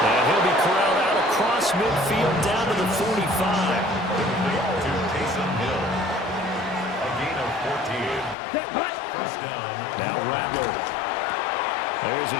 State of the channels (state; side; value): drops out; right; at 8.3 s